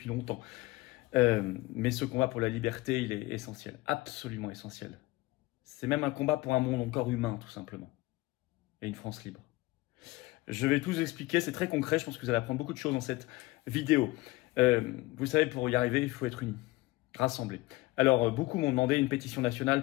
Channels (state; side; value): quieter; right; 20.3 dB